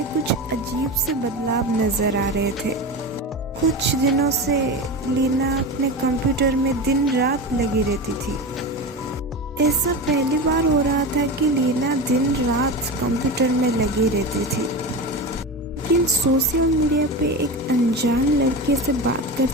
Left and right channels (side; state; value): both; normal; correlation 0.24